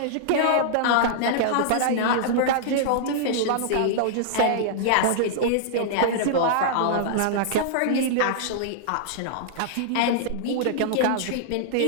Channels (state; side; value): different; both; correlation -0.02